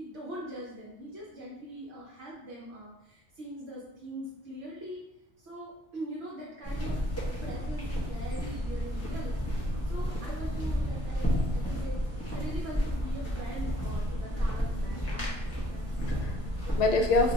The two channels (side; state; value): both; normal; correlation 0.63